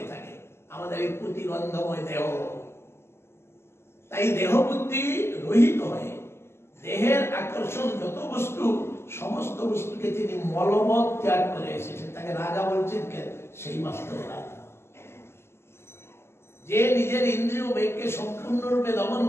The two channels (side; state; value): right; late; 0.12 ms